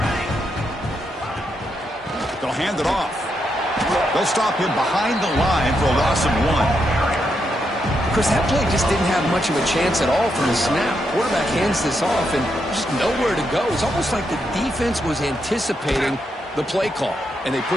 They'll hand it off. They'll stop him behind the line for a loss of 1. Chris, that play just didn't have much of a chance at all from the snap. Quarterback hands this off, and just nowhere to go. It's almost like the defense was anticipating the play call, and they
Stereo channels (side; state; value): both; normal; correlation 0.81